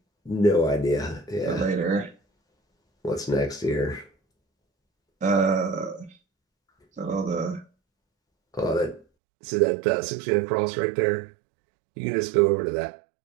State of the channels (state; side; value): drops out; left; at 9.1 s